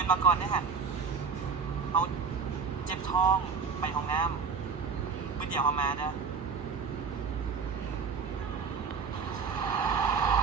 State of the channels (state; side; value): quieter; left; 5.6 dB